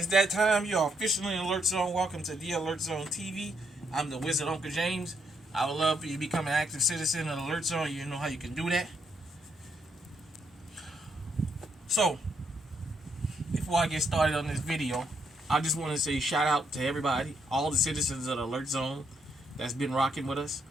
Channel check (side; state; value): both; normal; correlation 0.76